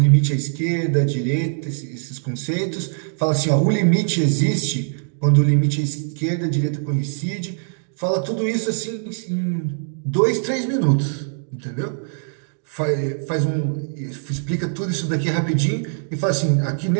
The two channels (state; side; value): silent; left; digital silence